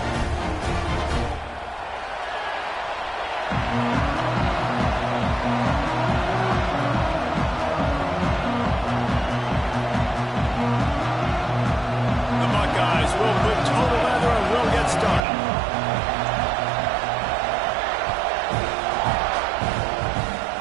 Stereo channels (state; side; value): drops out; left; at 15.2 s